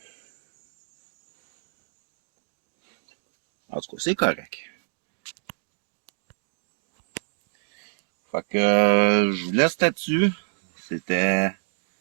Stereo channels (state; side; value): silent; left; digital silence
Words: En tout cas, c'est correct. Fait que je vous laisse là-dessus.